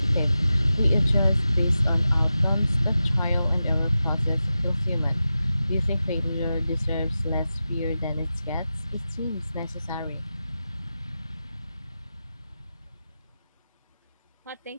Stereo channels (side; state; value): both; inverted; correlation -0.92